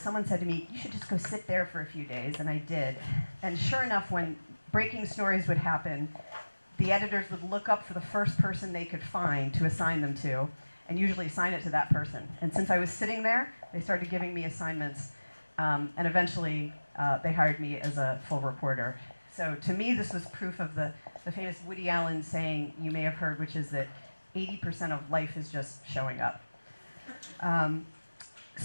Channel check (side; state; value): both; inverted; correlation -1.00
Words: said to me, you should just go sit there for a few days, and I did. And sure enough, when breaking stories would happen, the editors would look up for the first person they could find to assign them to, and usually assign it to that person. And since I was sitting there, they started giving me assignments, and eventually they hired me as a full reporter. So to me, this was proof of the famous Woody Allen saying you may have heard, which is that 80% of life is just showing up.